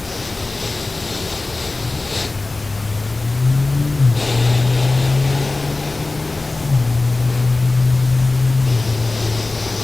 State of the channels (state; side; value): quieter; right; 3.2 dB